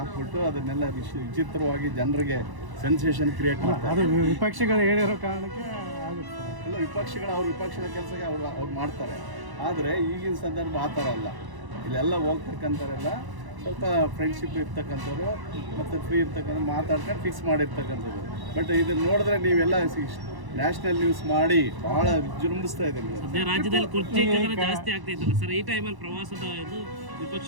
ಅದನ್ನೆಲ್ಲ ವಿಚಿತ್ರವಾಗಿ ಜನರಿಗೆ ಸೆನ್ಸೇಷನ್ ಕ್ರಿಯೇಟ್ ಮಾಡ್ತಾರೆ. ವಿಪಕ್ಷಗಳು ಹೇಳಿರೋ ಕಾರಣಕ್ಕೆ ಆಗುತ್ತೆ. ಎಲ್ಲ ವಿಪಕ್ಷಗಳು ಅವ್ರ ವಿಪಕ್ಷದ ಕೆಲಸಕ್ಕೆ ಅವ್ರು ಮಾಡ್ತಾರೆ. ಆದರೆ ಈಗಿನ ಸಂದರ್ಭ ಆ ಥರ ಅಲ್ಲ. ಇಲ್ಲೆಲ್ಲ ಹೋಗ್ತಕ್ಕಂಥವ್ರೆಲ್ಲ ಸ್ವಲ್ಪ ಫ್ರೆಂಡ್ಶಿಪ್ ಇರ್ತಕ್ಕಂಥವ್ರು ಮತ್ತು ಫ್ರೀ ಇರ್ತಕ್ಕಂಥ ಮಾತಾಡ್ಕೊಂಡು ಫಿಕ್ಸ್ ಮಾಡಿರ್ತಕ್ಕಂಥದ್ದು. ಬಟ್ ಇದನ್ನು ನೋಡಿದ್ರೆ ನೀವೆಲ್ಲ ನ್ಯಾಷನಲ್ ನ್ಯೂಸ್ ಮಾಡಿ ಭಾಳ ವಿಜೃಂಭಿಸ್ತಾ ಇದೆ. ರಾಜ್ಯದಲ್ಲಿ ಕುರ್ಚಿ ಜಾಸ್ತಿ ಆಗ್ತೈತಲ್ಲ ಸರ್, ಈ ಟೈಮಲ್ಲಿ ಪ್ರವಾಸದ ಇದು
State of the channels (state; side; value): late; left; 1.0 ms